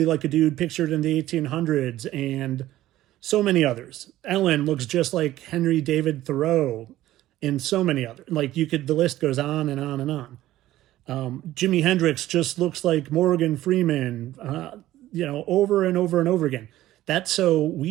like a dude pictured in the 1800s, and so many others. Ellen looks just like Henry David Thoreau, and so many others. Like, the list goes on and on and on. Jimi Hendrix just looks like Morgan Freeman, over and over and over again. That's so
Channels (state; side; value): quieter; left; 14.9 dB